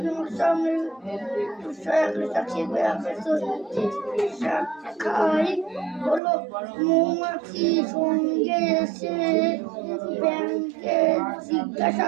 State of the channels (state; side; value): drops out; left; at 6.2 s